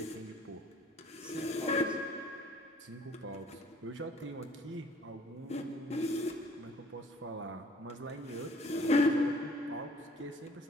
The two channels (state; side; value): normal; both; correlation 0.55